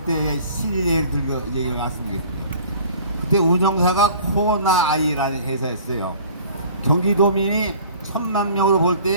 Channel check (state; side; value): inverted; both; correlation -0.48